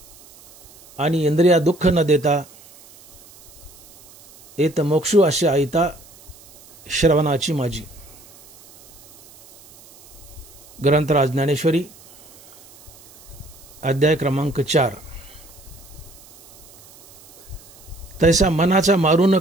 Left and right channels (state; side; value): noise; right; hiss, 24 dB below the sound